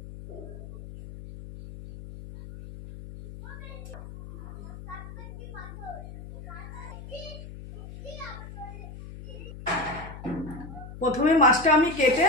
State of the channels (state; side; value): noise; left; hum, 12 dB below the sound